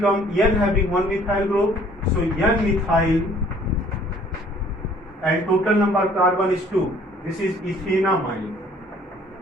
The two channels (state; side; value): normal; both; correlation 0.57